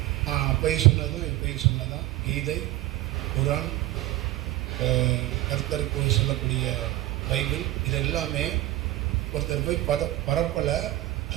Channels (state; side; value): quieter; left; 16.5 dB